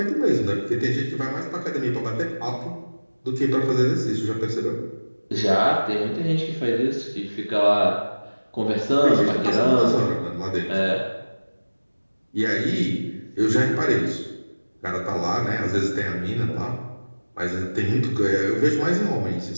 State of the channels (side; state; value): both; inverted; correlation -1.00